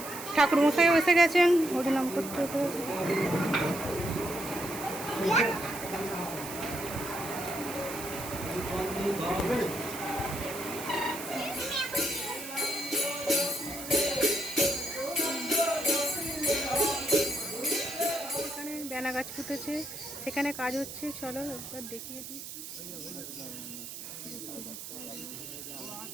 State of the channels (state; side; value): noise; right; hiss, 10 dB below the sound